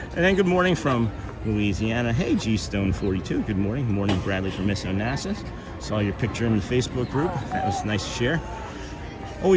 then good morning from Louisiana. Hey, G-Stone42, good morning. Good morning, Bradley from Miss Onassis. Saw your picture in the Facebook group. That was nice to share.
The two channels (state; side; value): identical; both; correlation 1.00